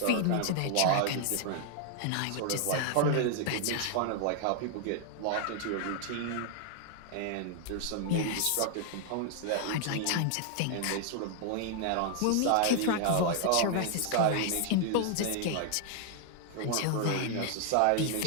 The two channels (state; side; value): different; both; correlation 0.00